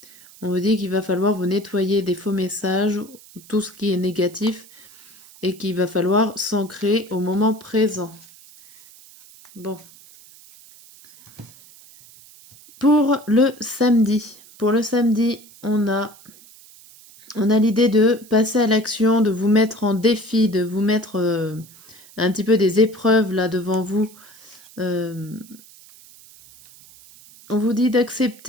On vous dit qu'il va falloir vous nettoyer des faux messages, tout ce qui est négatif, et qu'il va falloir s'ancrer au moment présent. Bon. Pour le samedi, on a l'idée de passer à l'action, de vous mettre en défi, de vous mettre un petit peu des épreuves là devant vous. On vous dit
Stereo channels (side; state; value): right; noise; hiss, 23 dB below the sound